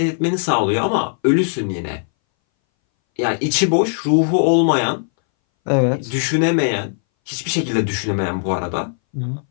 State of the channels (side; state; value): right; silent; 62 dB below the other